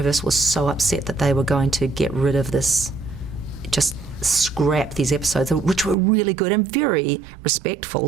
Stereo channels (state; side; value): drops out; left; at 6.0 s